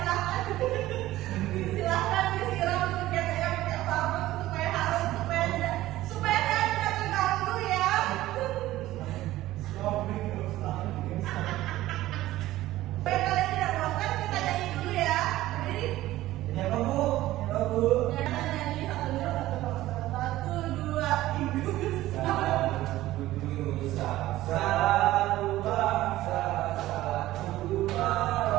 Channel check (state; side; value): quieter; left; 15.8 dB